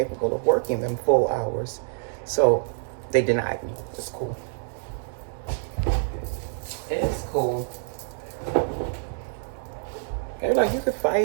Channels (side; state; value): left; silent; digital silence